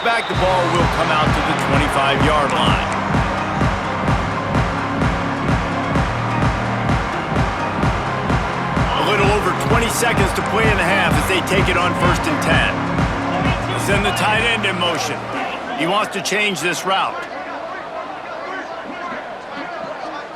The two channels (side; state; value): both; identical; correlation 1.00